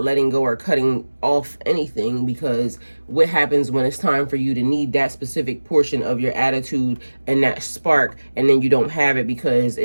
letting go or cutting off anything, because what happens when it's time for you to need that specific portion of your attitude and that spark, and then you don't have it because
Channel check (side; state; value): both; inverted; correlation -1.00